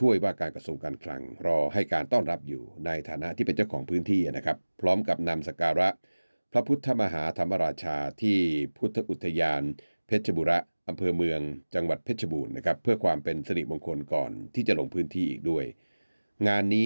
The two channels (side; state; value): both; inverted; correlation -1.00